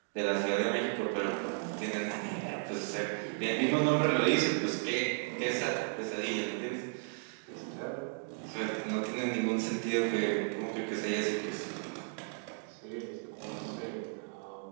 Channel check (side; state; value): left; silent; 55 dB below the other